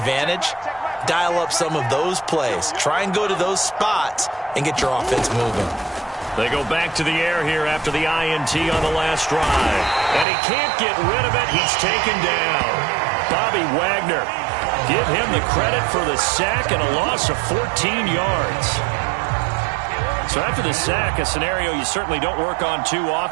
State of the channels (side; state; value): left; drops out; at 10.2 s